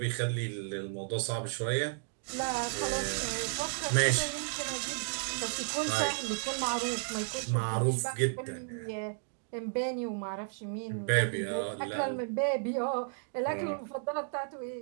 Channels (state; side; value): silent; left; digital silence